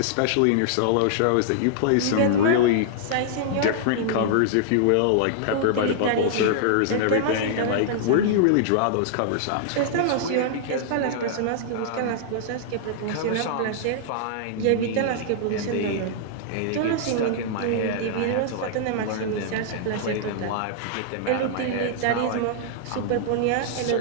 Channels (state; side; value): different; both; correlation -0.01